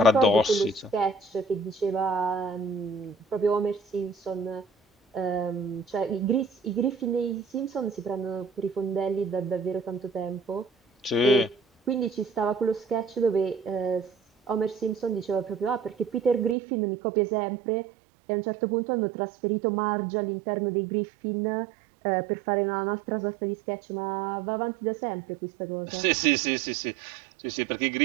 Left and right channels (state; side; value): drops out; left; at 16.6 s